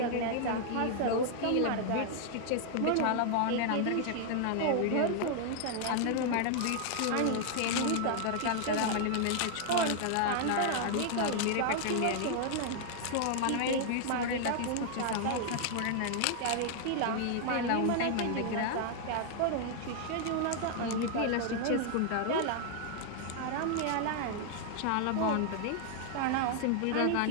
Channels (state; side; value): different; both; correlation 0.00